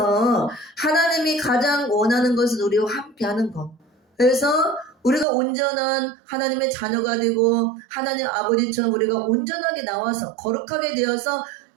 하나님이 가장 원하는 것은 우리와 함께 하는 거. 그래서 우리가 온전한 하나님의 자녀가 되고 하나님 아버지처럼 우리가 온전하게 나와서 거룩하게 되어서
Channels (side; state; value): left; drops out; at 5.2 s